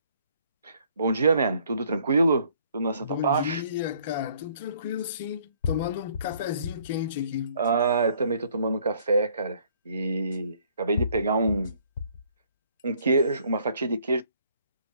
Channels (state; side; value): inverted; both; correlation -0.62